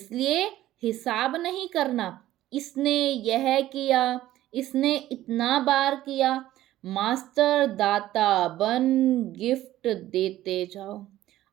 हिसाब नहीं करना, इसने यह किया, इसने इतना बार किया। मास्टर दाता बन गिफ्ट देते जाओ।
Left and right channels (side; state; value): left; quieter; 14.4 dB